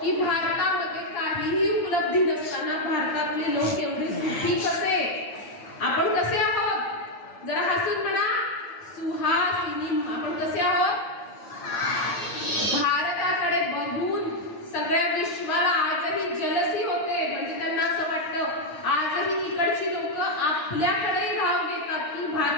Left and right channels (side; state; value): right; late; 9.7 ms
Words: की भारतामध्ये काहीही उपलब्धी नसताना भारतातले लोक एवढे सुखी कसे? आपण कसे आहोत? जरा हसून म्हणा, सुहासिनी. आपण आजही जलसी होते, म्हणजे त्यांना असं वाटतं आजही तिकडची लोक आपल्याकडे धाव घेतात की